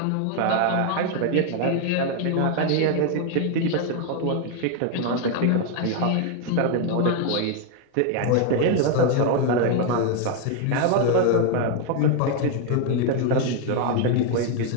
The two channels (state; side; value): different; both; correlation 0.01